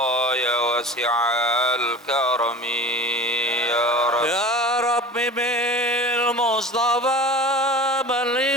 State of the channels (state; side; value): normal; both; correlation 0.37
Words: ya wasi'al karami ya Rabbi. Ya Rabbi bil Mustafa balligh